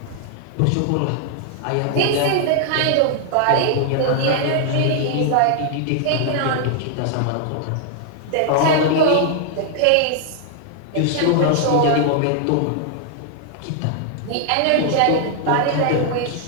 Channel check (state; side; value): different; both; correlation 0.00